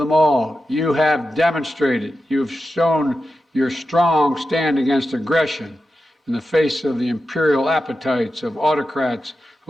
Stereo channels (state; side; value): normal; both; correlation 0.91